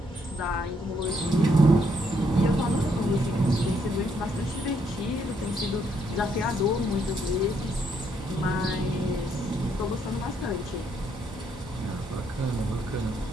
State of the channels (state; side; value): normal; both; correlation 0.72